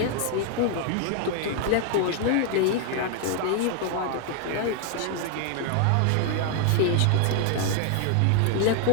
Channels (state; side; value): different; both; correlation 0.00